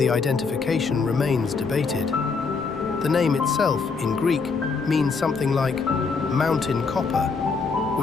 identification remains debated. The name itself, in Greek, means something like mountain copper,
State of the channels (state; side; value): quieter; right; 4.8 dB